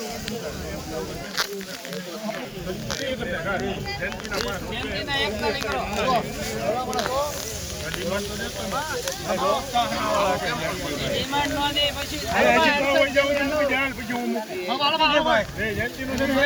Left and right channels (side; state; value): both; identical; correlation 1.00